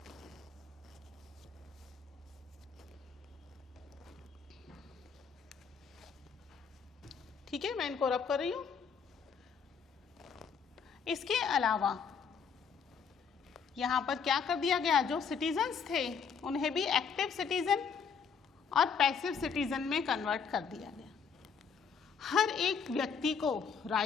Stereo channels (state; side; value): quieter; right; 6.3 dB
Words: ठीक है, मैं इनको रब कर रही हूं। इसके अलावा यहां पर क्या कर दिया गया, जो सिटीजन्स थे उन्हें भी एक्टिव सिटीजन और पैसिव सिटीजन में कन्वर्ट कर दिया गया। हर एक व्यक्ति को